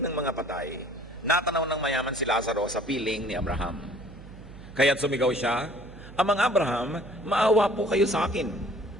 mga patay, natanaw ng mayaman si Lazaro sa piling ni Abraham. Kaya't sumigaw siya, Amang Abraham, maawa po kayo sa akin.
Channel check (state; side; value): noise; right; hum, 17 dB below the sound